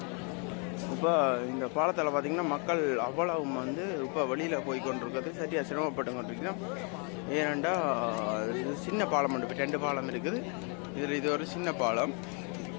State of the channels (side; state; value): right; quieter; 36.9 dB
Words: இப்போ இந்த பாலத்தால் பார்த்திங்கன்னா மக்கள் அவ்வளவு வந்து இப்போ வெளியில் போய் கொண்டிருக்கிறது சரியாக சிரமப்பட்டு கொண்டிருக்கோம். ஏனெண்டா இது சின்ன பாலம் உண்டு, இப்போ 2 பாலம் இருக்குது. இதில் இது ஒரு சின்ன பாலம்.